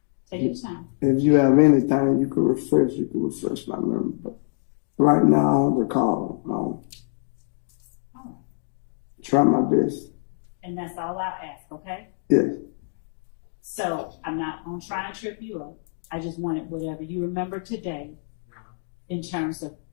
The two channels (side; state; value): right; silent; digital silence